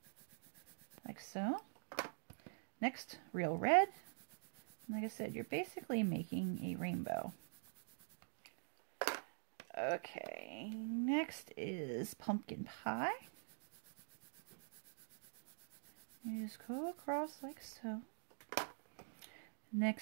like so. Next, Real Red. Like I said, you're basically making a rainbow. Okay, next is Pumpkin Pie. You just go across like so.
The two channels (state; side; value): silent; left; digital silence